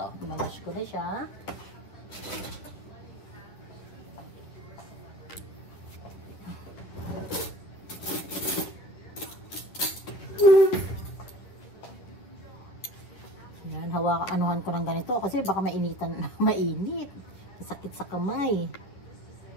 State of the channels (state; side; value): late; right; 10 ms